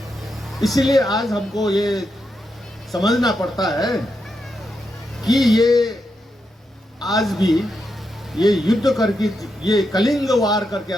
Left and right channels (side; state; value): both; normal; correlation 0.84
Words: इसीलिए आज हमको ये समझना पड़ता है कि ये आज भी ये युद्ध करके, ये कलिंग वार करके